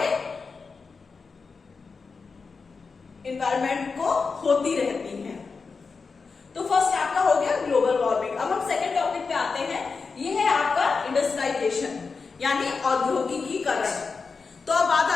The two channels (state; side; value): quieter; right; 4.8 dB